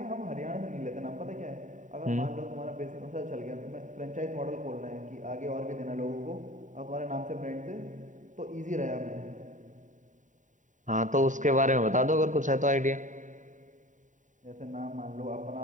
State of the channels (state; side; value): late; left; 0.36 ms